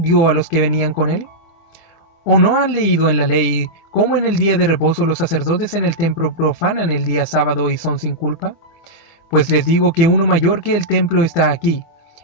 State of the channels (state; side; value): late; right; 24 ms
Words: a los que venían con él? ¿O no han leído en la ley cómo en el día de reposo los sacerdotes en el templo profanan el día sábado y son sin culpa? Pues les digo que uno mayor que el templo está aquí.